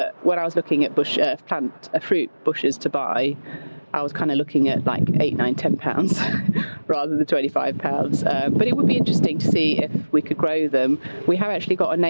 when I was looking at fruit bushes to buy, I was kind of looking at like £8, £9, £10 rather than £25. But it would be interesting to see if we could grow them. We have actually got a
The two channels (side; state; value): both; inverted; correlation -1.00